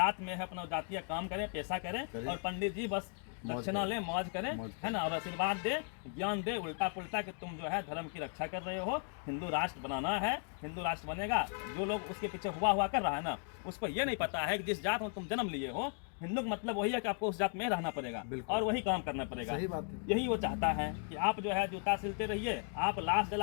में है अपना जातीय काम करें, पैसा करें, और पंडित जी बस दक्षिणा लें, मौज करें, है ना, और आशीर्वाद दे, ज्ञान दे उल्टा पुल्टा कि तुम जो है धर्म की रक्षा कर रहे हो, हिंदू राष्ट्र बनाना है, हिंदू राष्ट्र बनेगा। जो लोग उसके पीछे हुआ कर रहा है ना, उसको ये नहीं पता है कि जिस जात में तुम जन्म लिए हो, हिंदू का मतलब वही है कि आपको उस जात में रहना पड़ेगा और वही काम करना पड़ेगा। सही बात है। यही वो चाहता है कि आप जो है जूता सिलते रहिए, आप लाश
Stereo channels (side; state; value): right; quieter; 38.7 dB